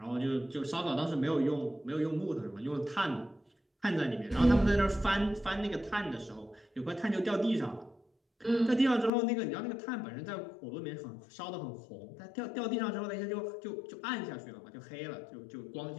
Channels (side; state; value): right; drops out; at 9.1 s